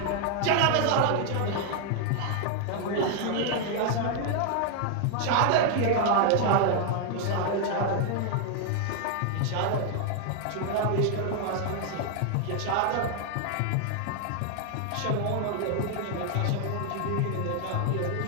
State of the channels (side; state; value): both; different; correlation 0.00